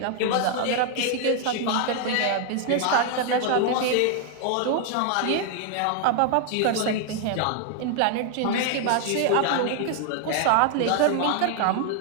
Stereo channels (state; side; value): different; both; correlation 0.00